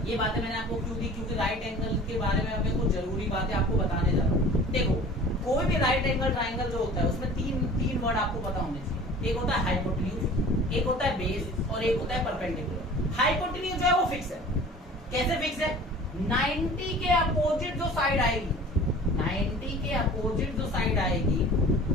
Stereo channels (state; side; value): normal; both; correlation 0.44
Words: ये बातें मैंने आपको क्यों दी, क्योंकि राइट एंगल के बारे में हमें कुछ जरूरी बातें आपको बताने जा रहा हूँ। देखो कोई भी राइट एंगल ट्राइंगल जो होता है उसमें तीन वर्ड आपको पता होने चाहिए। एक होता है हाइपोटेन्यूज, एक होता है बेस और एक होता है परपेंडिकुलर। हाइपोटेन्यूज है वो फिक्स है। कैसे फिक्स है? 90 के अपोजिट जो साइड आएगी, 90 के अपोजिट जो साइड आएगी